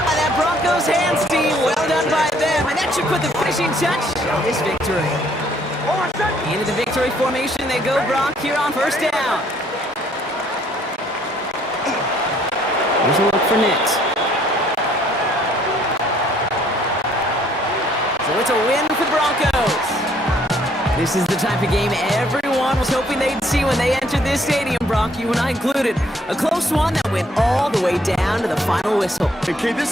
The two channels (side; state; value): both; normal; correlation 0.64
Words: by that Broncos hands team. Well done by them. And that should put the finishing touch on this victory. Into the victory formation they go, Brock, here on first down. Here's a look for Nix. So it's a win for the Broncos. This is the type of game everyone was hoping they'd see when they entered this stadium, Brock, you and I included. A close one that went all the way down to the final whistle. Okay,